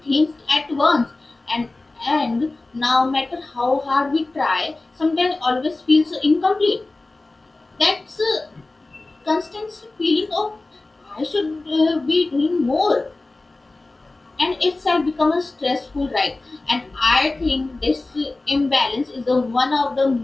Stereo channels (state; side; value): quieter; right; 3.1 dB